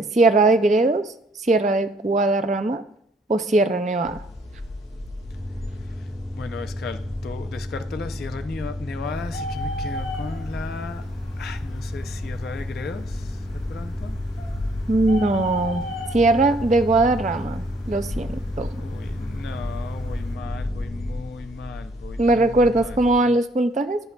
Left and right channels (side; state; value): both; normal; correlation 0.64